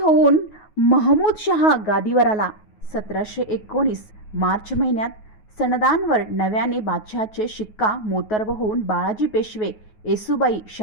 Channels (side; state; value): right; late; 9.4 ms